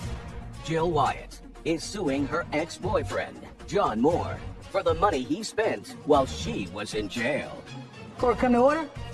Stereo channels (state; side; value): identical; both; correlation 1.00